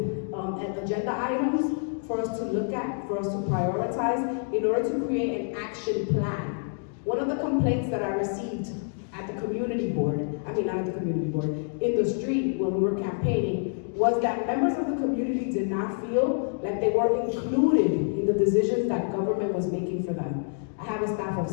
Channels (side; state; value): right; silent; 58 dB below the other